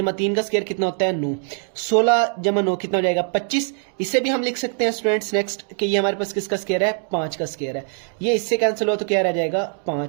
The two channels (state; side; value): silent; left; 55 dB below the other